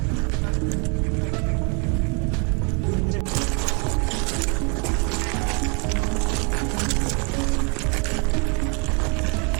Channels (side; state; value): left; quieter; 34.6 dB